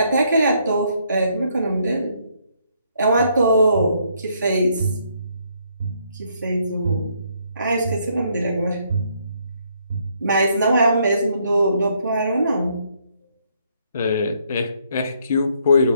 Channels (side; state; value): both; inverted; correlation -0.71